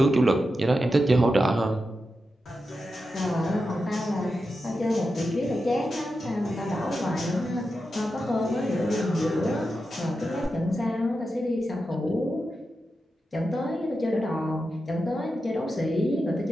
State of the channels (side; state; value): both; normal; correlation 0.89